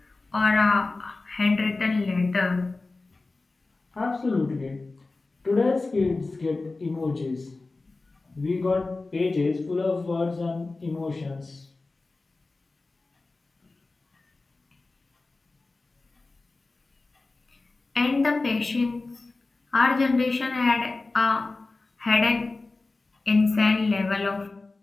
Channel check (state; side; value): quieter; right; 3.4 dB